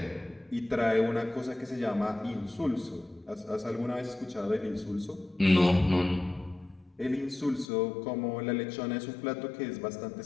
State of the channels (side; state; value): right; drops out; at 7.7 s